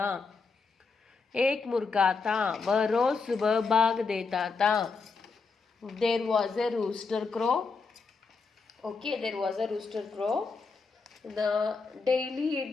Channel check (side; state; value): right; quieter; 4.6 dB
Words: एक मुर्गा था, वह रोज सुबह भाग देता था. There was a rooster crow. Okay, there was a rooster crow. The daily